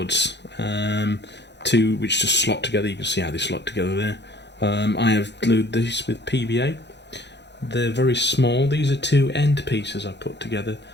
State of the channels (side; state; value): right; late; 0.50 ms